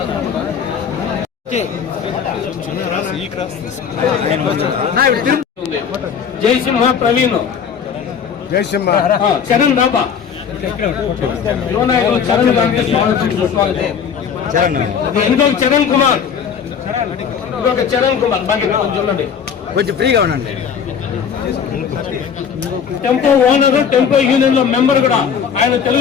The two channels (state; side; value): quieter; right; 7.2 dB